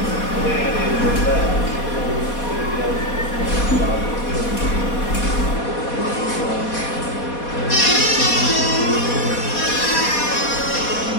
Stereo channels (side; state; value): right; late; 4.2 ms